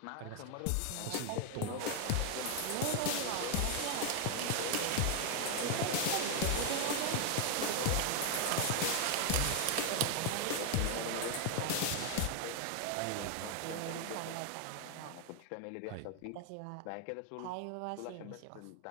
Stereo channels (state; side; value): different; both; correlation 0.00